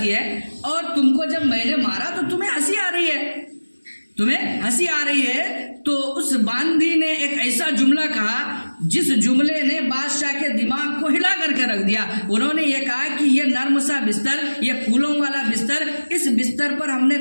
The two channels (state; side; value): inverted; both; correlation -1.00